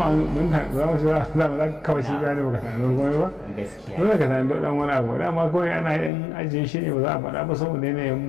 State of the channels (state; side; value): drops out; right; at 6.1 s